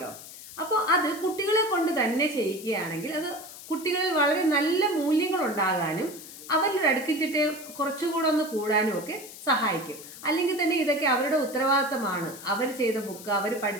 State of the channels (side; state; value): left; noise; hiss, 15 dB below the sound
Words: അപ്പോൾ അത് കുട്ടികളെ കൊണ്ട് തന്നെ ചെയ്യിക്കുകയാണെങ്കിൽ അത് കുട്ടികളിൽ വളരെ നല്ല മൂല്യങ്ങൾ ഉണ്ടാകാനും അവരുടെ അടുക്കിച്ചിട്ട് കുറച്ചുകൂടെ ഒന്ന് കൂടാനും ഒക്കെ സഹായിക്കും. അല്ലെങ്കിൽ തന്നെ ഇതൊക്കെ അവരുടെ ഉത്തരവാദിത്തമാണ്. അവർ ചെയ്ത ബുക്ക്, അവർ